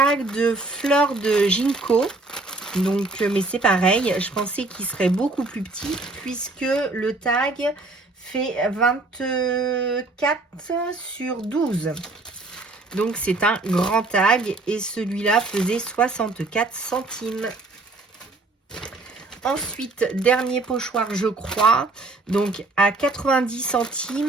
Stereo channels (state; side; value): quieter; left; 3.2 dB